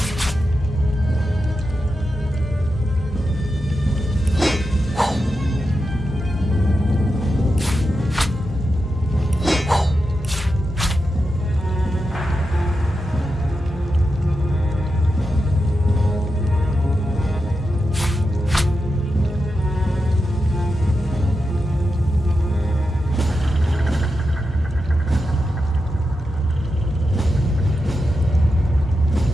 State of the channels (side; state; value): both; normal; correlation 0.89